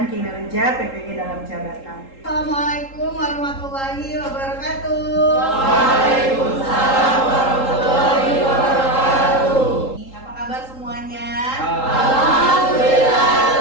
kinerja PPG dalam jabatan. Assalamualaikum warahmatullahi wabarakatuh. Waalaikumsalam warahmatullahi wabarakatuh. Apa kabar semuanya?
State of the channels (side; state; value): right; late; 3.8 ms